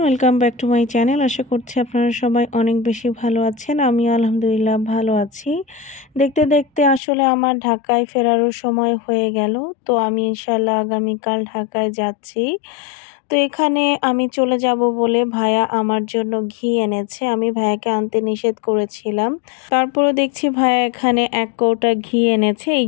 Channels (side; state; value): right; drops out; at 7.0 s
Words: welcome back to my channel. আশা করছি আপনারা সবাই অনেক বেশি ভালো আছেন। আমি আলহামদুলিল্লাহ ভালো আছি। দেখতে দেখতে আসলে আমার ঢাকায় ফেরারও সময় হয়ে গেল। তো আমি ইনশাল্লাহ আগামীকাল ঢাকায় যাচ্ছি। তো এখানে আমি চলে যাব বলে ভাইয়া আমার জন্য ঘি এনেছে। আমি ভাইয়াকে আনতে নিষেধ করেছিলাম, তারপরও দেখছি ভাইয়া এখানে 1 কৌটা ঘি এনেছে। এই